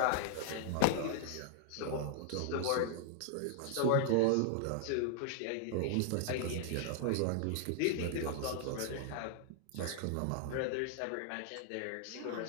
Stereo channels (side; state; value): both; different; correlation -0.01